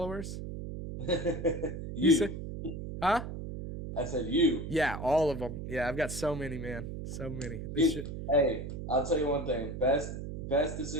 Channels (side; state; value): right; noise; hum, 7 dB below the sound